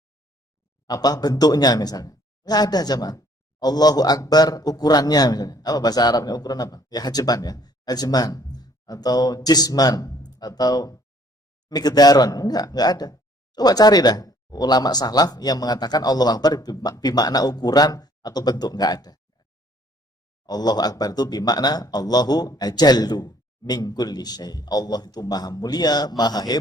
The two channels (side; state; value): both; normal; correlation 0.61